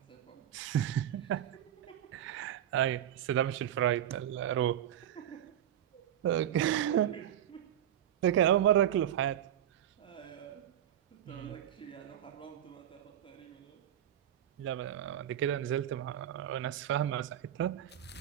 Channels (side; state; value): left; quieter; 10.9 dB